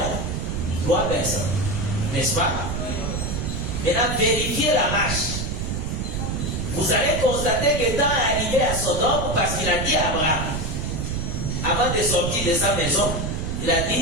3 personnes. N'est-ce pas? Maintenant, vérifiez la marche. Vous allez constater que temps est arrivé à Sodome parce qu'il a dit à Abraham, avant de sortir de sa maison, il a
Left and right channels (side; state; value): right; noise; rumble, 2 dB below the sound